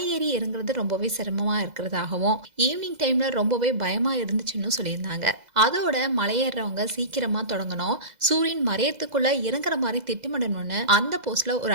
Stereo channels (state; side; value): late; left; 2.0 ms